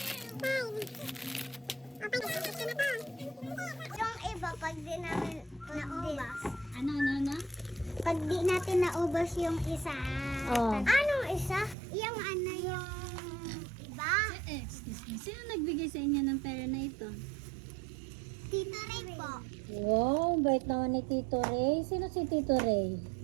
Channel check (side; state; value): left; drops out; at 11.8 s